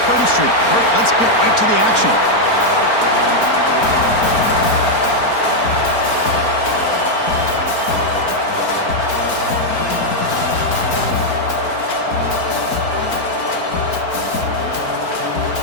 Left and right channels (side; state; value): right; late; 4.4 ms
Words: Street. Kirk, let's get right to the action.